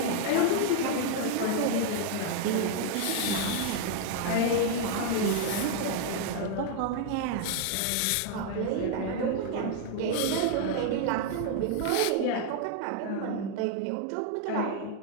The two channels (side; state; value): both; different; correlation 0.00